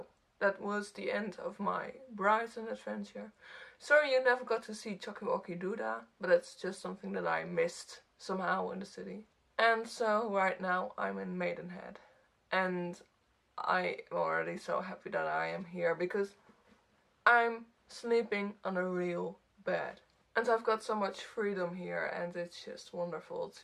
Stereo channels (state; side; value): identical; both; correlation 1.00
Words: that was the end of my Brighton adventure. Sorry you never got to see Chokiwoki Duda, but it's just something that I missed somehow in the city. And so right now I'm in Maidenhead. And I am already so happy that I am here because I'm sleeping on a real bed. And I've got so much freedom here, and it's just wonderful